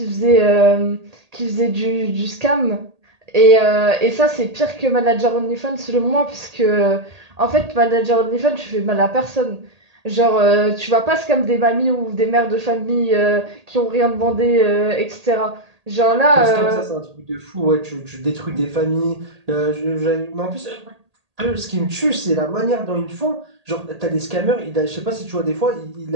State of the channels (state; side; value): late; left; 1.8 ms